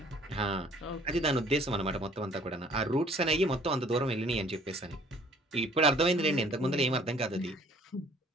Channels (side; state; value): both; normal; correlation 0.56